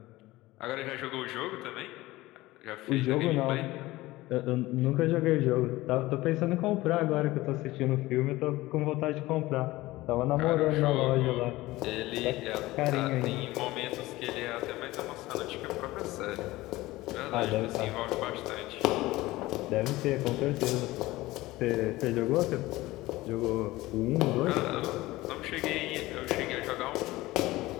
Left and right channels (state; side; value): quieter; right; 18.6 dB